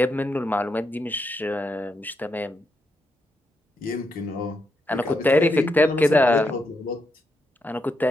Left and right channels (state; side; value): normal; both; correlation 0.82